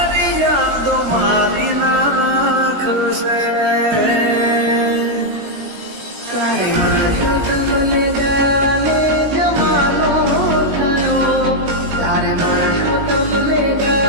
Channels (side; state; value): left; late; 18 ms